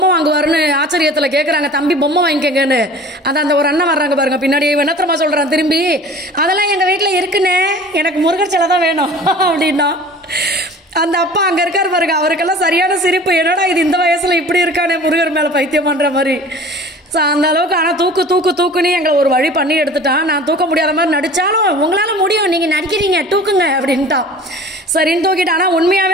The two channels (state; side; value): normal; both; correlation 0.43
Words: வாங்குவாருன்னு ஆச்சரியத்துல கேக்குறாங்க, தம்பி பொம்மை வாங்கிக்கங்கன்னு. அந்த ஒரு அண்ணன் வர்றாங்க பாருங்க பின்னாடி, என்னத்திரமா சொல்றான் திரும்பி, அதெல்லாம் எங்க வீட்டுல இருக்குன்னு, எனக்கு முருகர் சிலை தான் வேணும் அப்படின்னா. அந்த அப்பா அங்க இருக்காரு பாருங்க, அவருக்கெல்லாம் சரியான சிரிப்பு. என்னடா இது இந்த வயசுல இப்படி இருக்கானே முருகர் மேல பைத்தியம் பண்ற மாதிரி. அந்த அளவுக்கு. ஆனா தூக்குன்னு எங்களை ஒரு வழி பண்ணி எடுத்துட்டான். நான் தூக்க முடியாத மாதிரி நடிச்சாலும் உங்களால முடியும், நீங்க நடிக்கிறீங்க தூக்குங்க அப்படின்ட்டான். சரின்னு தூக்கிட்டு. ஆனா